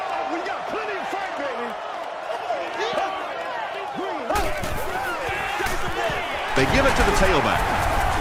They give it to the tailback.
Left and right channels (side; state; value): both; identical; correlation 1.00